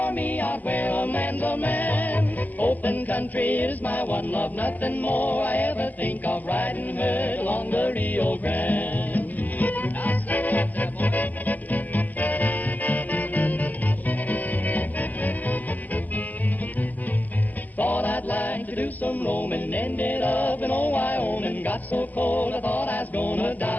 me out where a man's a man. Open country is my one love, nothing more I ever think of, riding herd along the Rio Grande. Thought I'd like to do some roaming, ended up in old Wyoming. Got so cold I thought I was gonna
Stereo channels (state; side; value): late; right; 0.082 ms